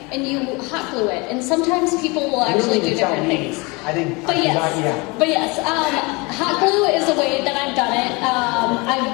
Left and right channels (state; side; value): quieter; right; 26.9 dB